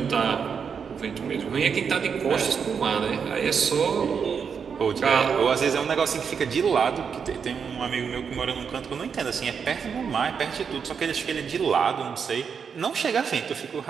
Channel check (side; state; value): left; quieter; 6.5 dB